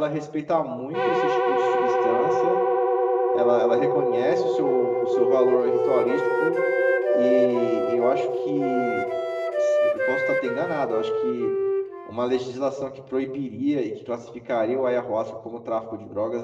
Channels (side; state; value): both; identical; correlation 1.00